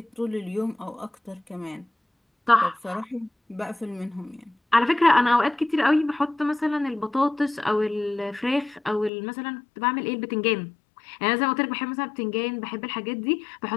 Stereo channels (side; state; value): right; drops out; at 9.1 s